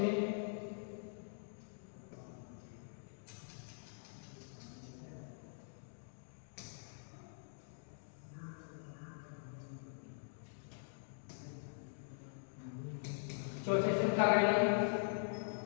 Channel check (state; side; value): silent; right; digital silence